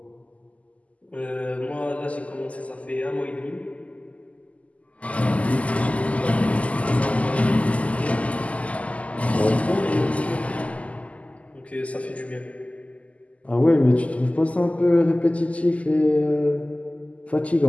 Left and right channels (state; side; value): late; right; 0.068 ms